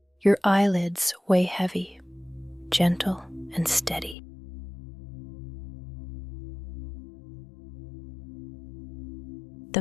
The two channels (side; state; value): right; drops out; at 4.2 s